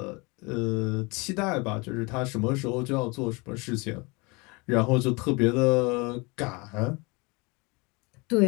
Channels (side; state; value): right; quieter; 27.4 dB